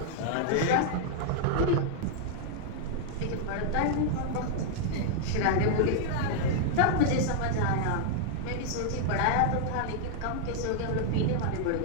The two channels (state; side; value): different; both; correlation -0.01